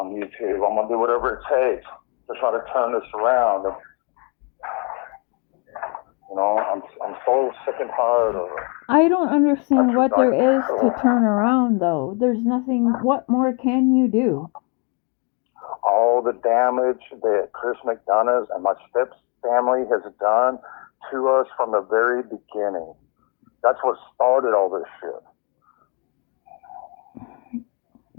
YouTube. I'm going to do whatever it takes to try to turn this around. And, I'm so sick and tired of it. I don't understand what there is to turn around, though. There's nothing. What more can you do? All the damage that Chris McDonough and my step's family has done to us from the very beginning. That's what started all this shit.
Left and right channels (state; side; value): quieter; right; 35.2 dB